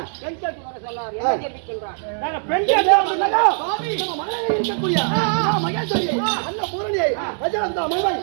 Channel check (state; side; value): silent; left; digital silence